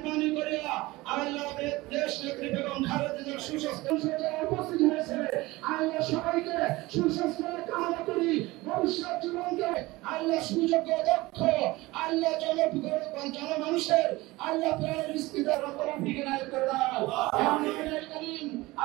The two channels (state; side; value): quieter; left; 20.5 dB